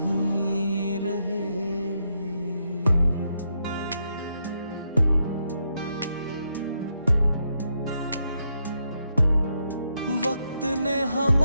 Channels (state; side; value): inverted; both; correlation -0.80